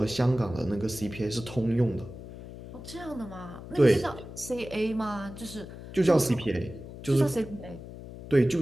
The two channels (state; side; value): noise; left; hum, 13 dB below the sound